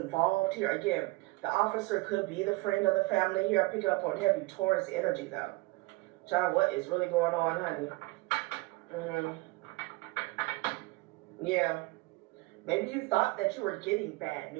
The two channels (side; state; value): left; quieter; 23.0 dB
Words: here. Again, the officer could be the friend of the family here. Picking up on heavy Taurus energy, though. Child, what is really going on, honey? Yeah. Maybe you thought that you were getting bad